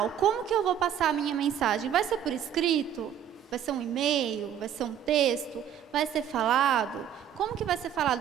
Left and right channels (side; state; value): left; quieter; 9.5 dB